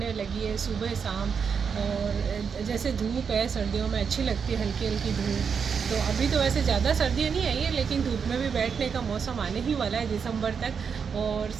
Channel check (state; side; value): quieter; left; 6.4 dB